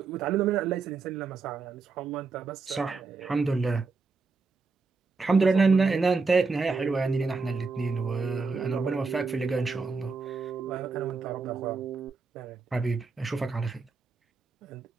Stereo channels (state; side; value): quieter; left; 4.3 dB